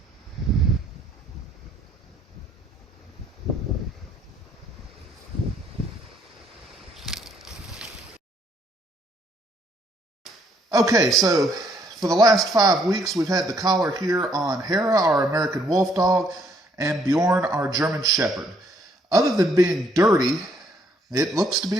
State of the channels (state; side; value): normal; both; correlation 0.68